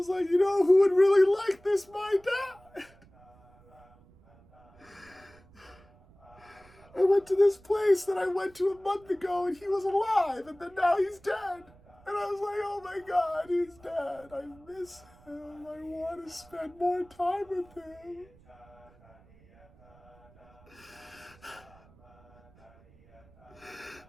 like, you know who would really like this? My dad. I went to this place that I went to a month ago and he was alive, and then now he's dead. And I was like, oh my God, he's dead. I miss him. I want to spend more time with him.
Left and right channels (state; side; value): noise; right; rumble, 27 dB below the sound